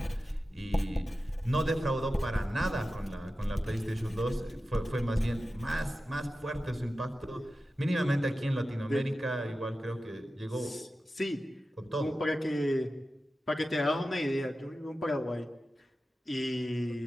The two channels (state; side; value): normal; both; correlation 0.93